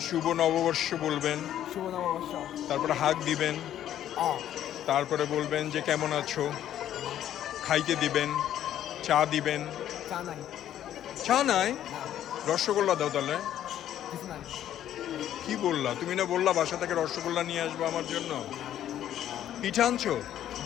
শুভ নববর্ষ বলবেন, শুভ নববর্ষ। তারপরে হাগ দিবেন, তারপরে বলবেন যে কেমন আছো, খাইতে দিবেন, চা দিবেন। চা নাই, চা নাই? রসগোল্লা দাও তাহলে। কিছু নাই। কি বললা? তুমি না বললা বাসা থেকে রসগোল্লা নিয়ে আসবো আমার জন্য। পিঠা আনছো?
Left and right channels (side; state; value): right; quieter; 11.3 dB